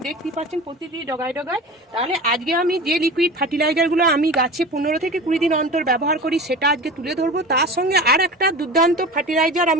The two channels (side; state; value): both; normal; correlation 0.33